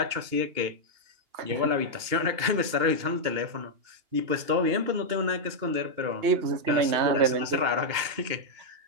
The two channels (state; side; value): late; left; 2.8 ms